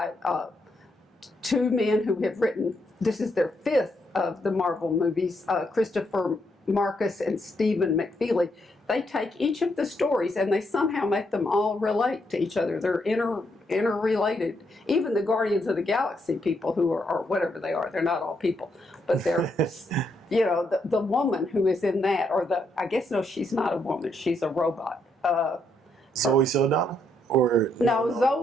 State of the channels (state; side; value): normal; both; correlation 0.77